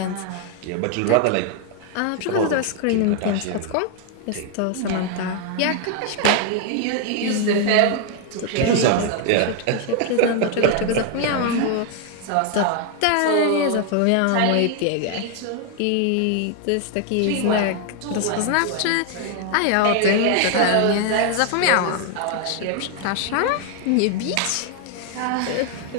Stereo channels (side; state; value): both; different; correlation 0.00